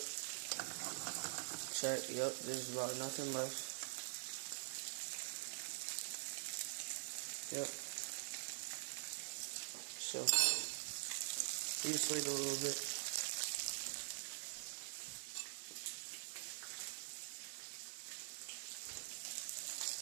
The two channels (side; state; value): left; silent; digital silence